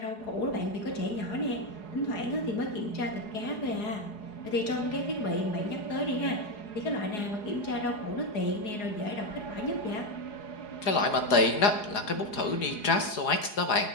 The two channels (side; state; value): right; late; 4.8 ms